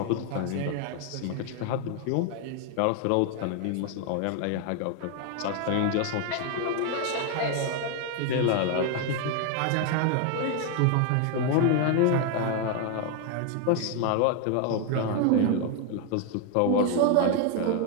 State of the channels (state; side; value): different; both; correlation 0.01